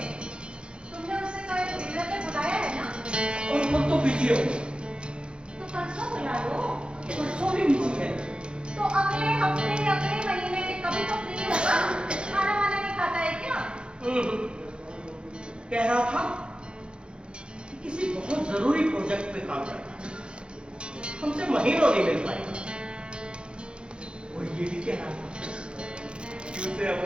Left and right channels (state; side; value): late; left; 0.054 ms